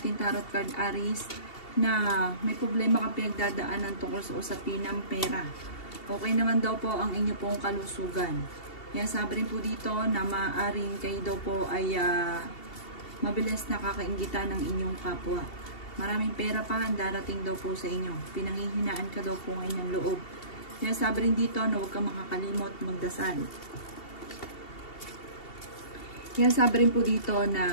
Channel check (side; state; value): right; late; 2.7 ms